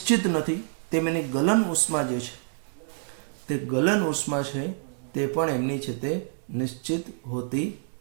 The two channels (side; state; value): left; silent; digital silence